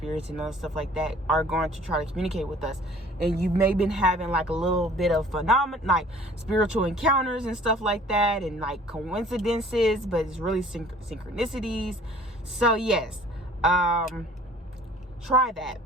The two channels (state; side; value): normal; both; correlation 0.51